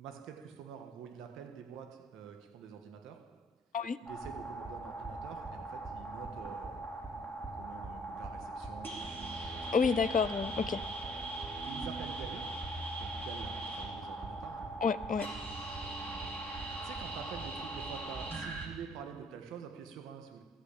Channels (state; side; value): normal; both; correlation 0.60